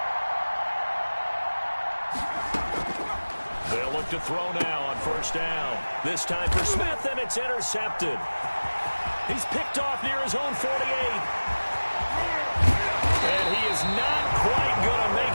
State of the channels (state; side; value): inverted; both; correlation -1.00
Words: They'll look to throw now on first down. This time for Smith, and it's intercepted. He's picked off near his own 48. And he is not quite going to